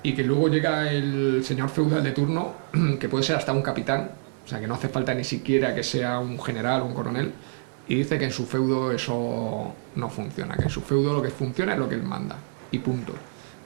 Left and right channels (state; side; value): silent; left; 61 dB below the other